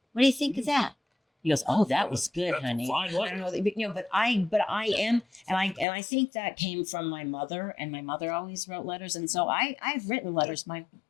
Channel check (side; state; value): right; drops out; at 5.9 s